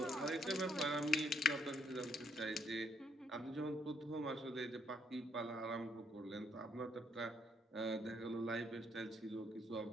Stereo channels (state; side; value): normal; both; correlation 0.72